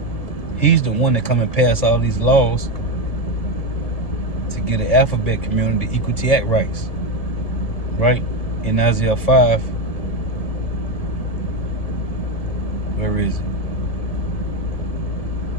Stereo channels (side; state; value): right; late; 1.7 ms